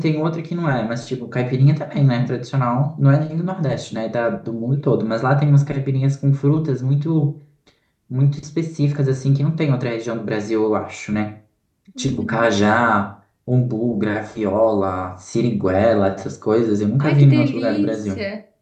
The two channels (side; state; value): both; identical; correlation 1.00